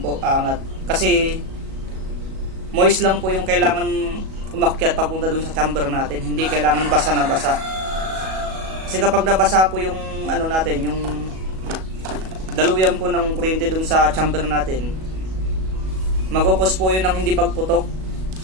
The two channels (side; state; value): left; late; 37 ms